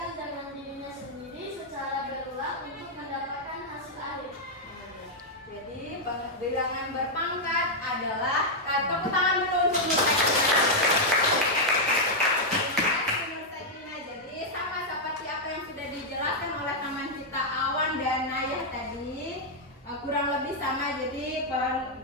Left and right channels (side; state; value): both; normal; correlation -0.03